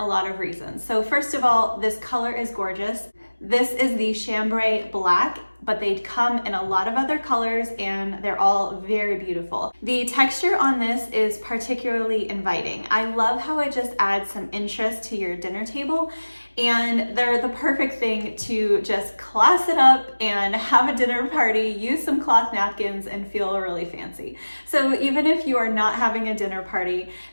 lot of reasons. So first of all, this color is gorgeous. This is the chambray black, but they come in a lot of other colors and they're all very beautiful. The texture on this is particularly inviting. I love how it just adds some interest to your dinner table, and they're the perfect thing to just class it up and have a dinner party, use some cloth napkins and feel really fancy. So even if you are not having a dinner party,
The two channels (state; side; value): inverted; both; correlation -1.00